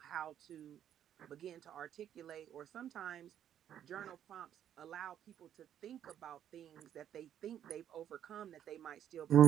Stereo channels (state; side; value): quieter; left; 10.2 dB